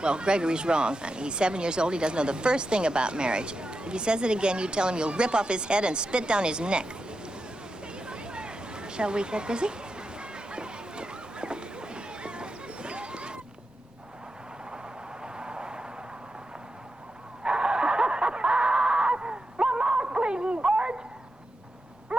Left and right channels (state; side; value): normal; both; correlation 0.89